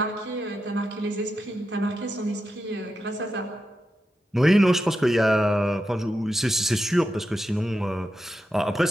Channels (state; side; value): normal; both; correlation 0.87